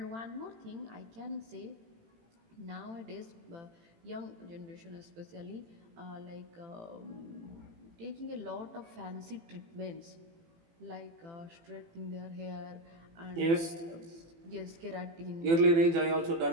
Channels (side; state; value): left; late; 18 ms